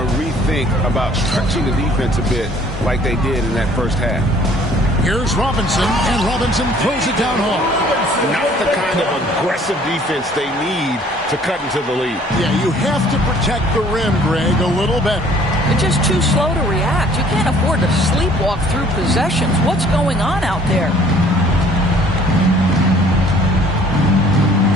rethink about stretching the defense a bit like they did in that first half. Here's Robinson, and Robinson throws it down hard. Not the kind of aggressive defense they need to cut into the lead. Yeah, you have to protect the rim, Greg, a little better. They're just too slow to react. You can't afford to sleepwalk through possessions. What's going on out there?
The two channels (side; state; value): both; normal; correlation 0.56